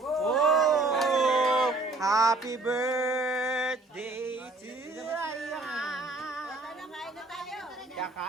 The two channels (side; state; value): left; quieter; 3.1 dB